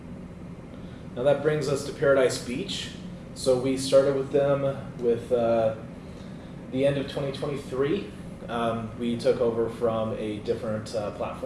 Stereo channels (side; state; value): both; identical; correlation 1.00